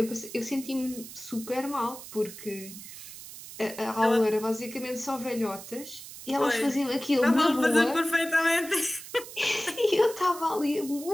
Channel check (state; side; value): noise; right; hiss, 14 dB below the sound